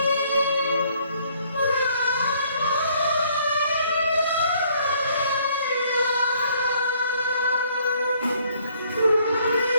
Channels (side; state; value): both; inverted; correlation -0.64